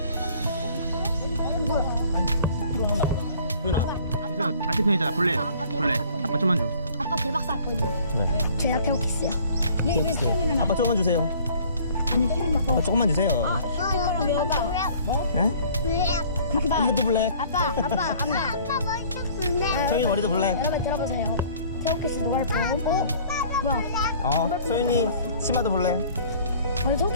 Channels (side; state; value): both; inverted; correlation -0.53